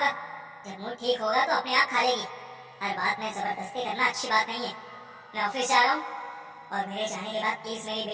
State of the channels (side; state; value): both; identical; correlation 1.00